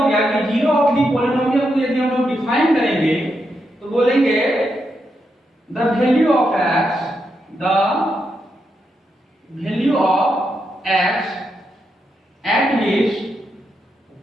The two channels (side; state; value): both; normal; correlation 0.83